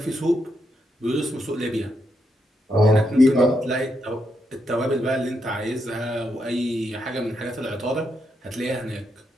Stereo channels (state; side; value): normal; both; correlation 0.81